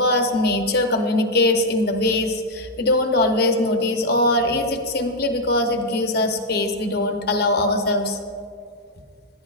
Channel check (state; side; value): normal; both; correlation 0.00